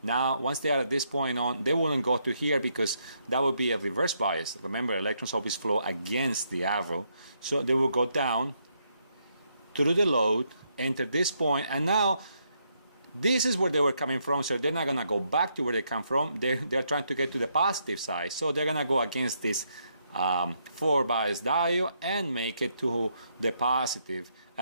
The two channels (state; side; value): inverted; both; correlation -0.76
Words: Now, once they are at this point on, they wouldn't go to here because that would be a reverse bias. Remember, electrons always flow against the arrow. So they will go down through the load, enter this point, and now this is where they were coming from, so they're not going to go back to where they come from. They're trying to get to the positive side. So they're going to go against this 4 bias diode and make it to the positive.